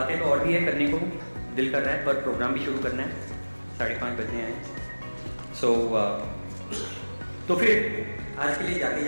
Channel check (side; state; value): both; inverted; correlation -1.00